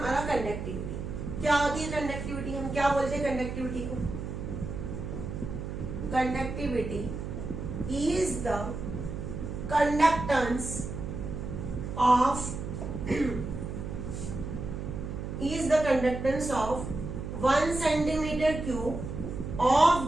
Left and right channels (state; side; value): noise; right; hum, 6 dB below the sound